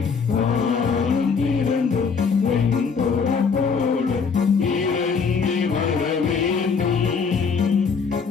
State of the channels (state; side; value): quieter; right; 5.6 dB